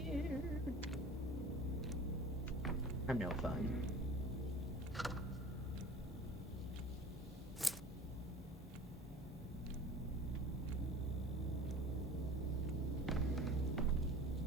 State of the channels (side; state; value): both; normal; correlation 0.41